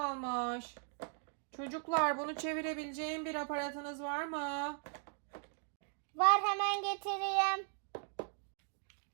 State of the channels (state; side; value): silent; left; 52 dB below the other